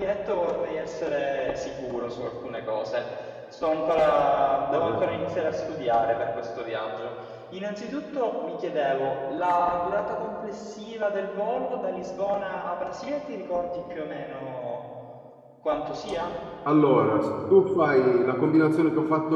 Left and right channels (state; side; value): identical; both; correlation 1.00